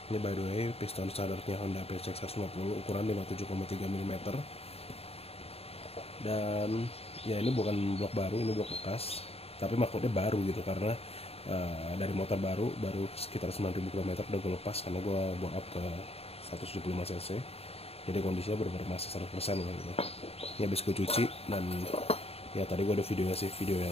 Ini by the way, piston standarnya Honda PCX 150 ukuran 57,3 mm. Dan ya ini bukan blok baru, ini blok bekas. Tapi maksudnya baru gitu karena dari motor baru sekitar 9.000 km udah gue lepas karena gue bore up ke 175 cc. Jadi kondisinya benar-benar masih 100% gitu. Ini habis gue cuci dan ya tadi gue ada videonya sih, video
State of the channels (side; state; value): right; late; 0.29 ms